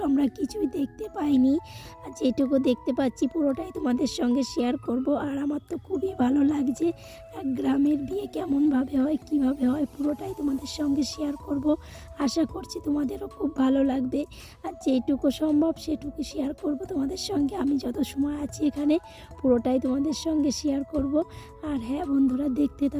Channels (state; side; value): identical; both; correlation 1.00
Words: আমরা কিছুই দেখতে পাইনি। আর যেটুকু দেখতে পাচ্ছি পুরোটাই তোমাদের সঙ্গে শেয়ার করব। আর আমার তো খুবই ভালো লাগছে, এক গ্রামের বিয়ে কেমনভাবে হয়, কিভাবে হয়, পুরোটাই তোমাদের সঙ্গে শেয়ার করব। আশা করছি তোমাদেরও খুব ভালো লাগবে। আর যেটুকু সম্ভব সেটুকু শেয়ার করব তোমাদের সঙ্গে। আমি যত সময় আছি এখানে পুরোটাই তোমাদের সঙ্গে শেয়ার করব। আর হ্যাঁ বন্ধুরা, দেখতে